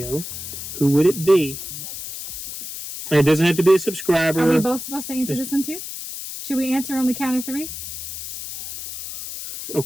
who would it be? And it doesn't have to be a subscriber. Are we both supposed to answer this one too? Should we answer on the count of 3?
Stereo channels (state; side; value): noise; left; hiss, 9 dB below the sound